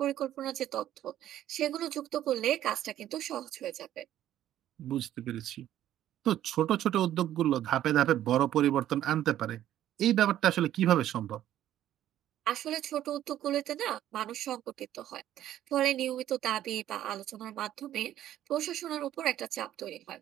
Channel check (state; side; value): quieter; left; 12.2 dB